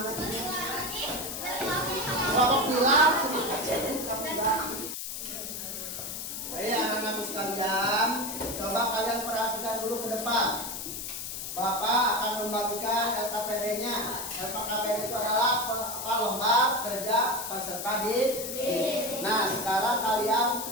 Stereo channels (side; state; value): left; noise; hiss, 6 dB below the sound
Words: tadi? Kelompok bilang. Baik anak-anakku sekalian, coba kalian perhatikan dulu ke depan. Bapak akan membagikan LKPD-nya. LKPD itu adalah lembar kerja peserta didik. Nah, sekarang kalian